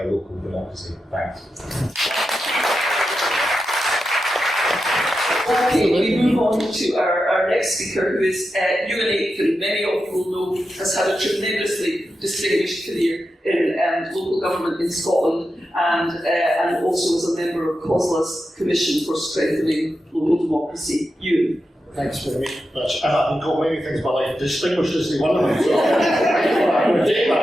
local democracy. Thanks. Okay, we move on to our next speaker, who is Ewan Aitken. Many of you will know has had a tremendously distinguished career in local government in Scotland, and also as a member of COSLA's Commission for Strengthening Local Democracy. Ewan. Thanks very much. I've been called many things in my life. Distinguished is one of them. So I'm going to take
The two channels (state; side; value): normal; both; correlation 0.89